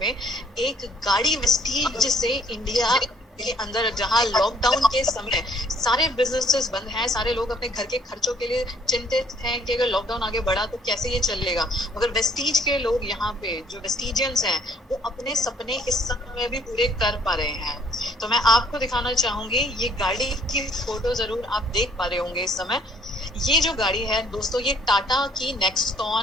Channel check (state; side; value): normal; both; correlation 0.63